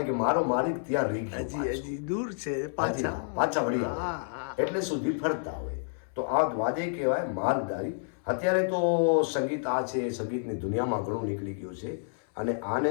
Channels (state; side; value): silent; right; 58 dB below the other